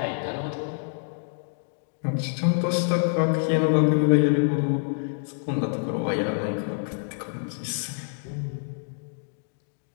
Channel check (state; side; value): silent; right; digital silence